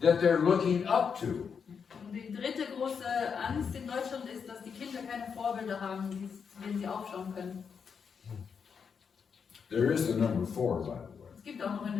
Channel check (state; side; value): quieter; right; 6.4 dB